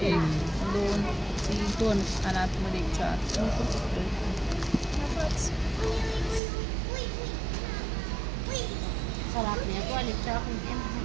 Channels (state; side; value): drops out; left; at 6.4 s